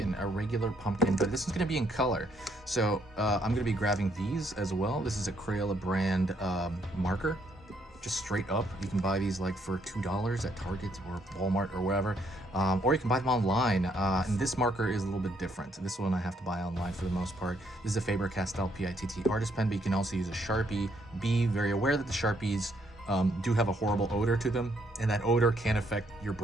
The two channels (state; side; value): normal; both; correlation 0.71